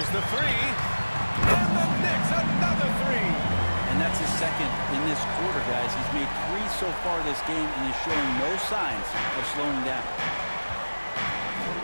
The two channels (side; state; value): both; inverted; correlation -1.00